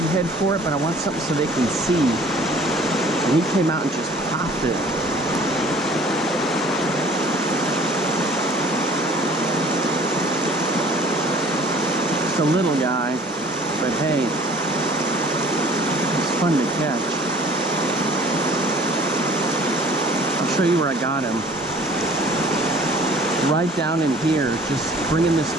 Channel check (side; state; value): both; normal; correlation 0.52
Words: head for it, but I want something so they can see. And he came out and just popped it. Just a little guy, but hey, it's fun to catch. I'll show you where I got him. Right down in here, just bringing this